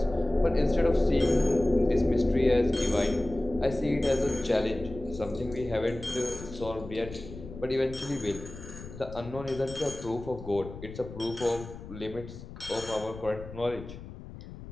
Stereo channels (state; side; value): noise; left; rumble, 13 dB below the sound